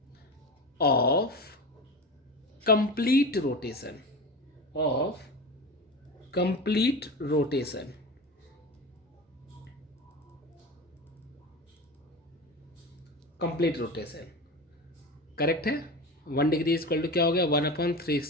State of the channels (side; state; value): both; normal; correlation 0.27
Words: of complete rotation, of complete rotation. Complete rotation correct है। 1 डिग्री इक्वल टू क्या हो गया,